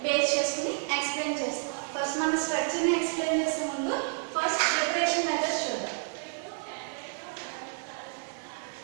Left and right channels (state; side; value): silent; left; 58 dB below the other